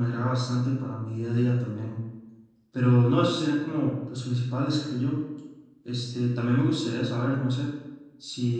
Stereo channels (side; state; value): both; identical; correlation 1.00